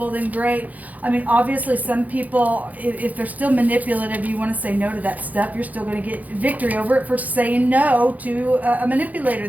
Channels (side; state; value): left; late; 0.078 ms